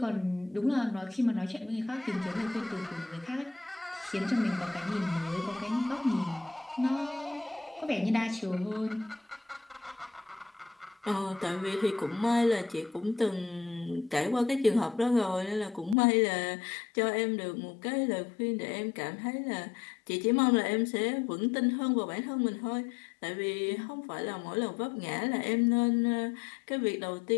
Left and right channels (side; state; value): right; drops out; at 16.0 s